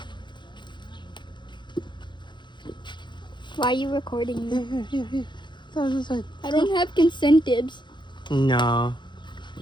Why are you recording me? Here. This side. I don't have consentives. No.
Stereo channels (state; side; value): late; right; 0.22 ms